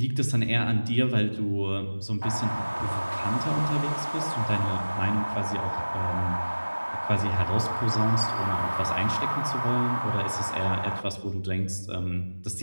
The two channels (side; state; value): both; inverted; correlation -1.00